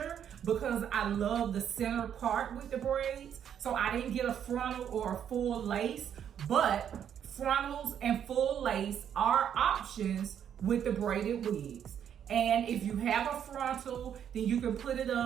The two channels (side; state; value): left; quieter; 9.0 dB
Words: because I love the center part with the braids. So I didn't get a frontal or a full lace, but frontals and full lace are options with the braided wigs. And if you have a frontal, then you can put it